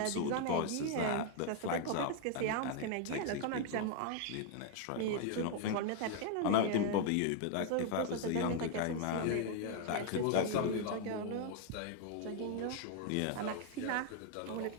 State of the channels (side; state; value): both; different; correlation 0.00